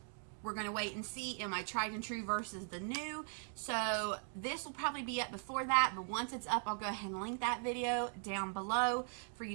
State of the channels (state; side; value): silent; left; 51 dB below the other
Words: We're going to wait and see. Am I tried and true versus the new? So this will probably be up before that, but once it's up, I'll go ahead and link that video down below for